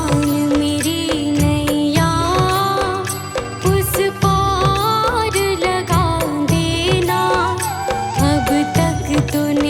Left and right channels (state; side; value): identical; both; correlation 1.00